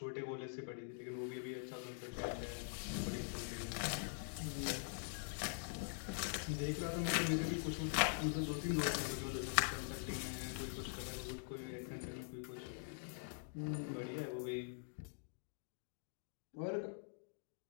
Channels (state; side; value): silent; right; digital silence